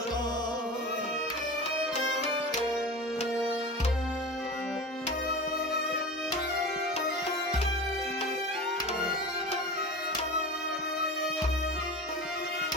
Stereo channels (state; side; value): normal; both; correlation 0.31